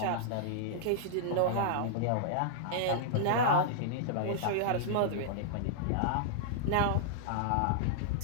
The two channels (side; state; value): both; different; correlation -0.02